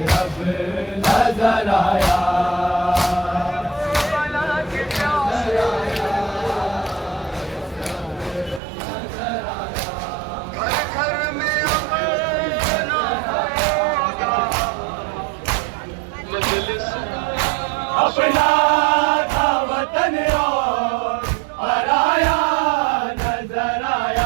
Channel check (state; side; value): drops out; left; at 8.6 s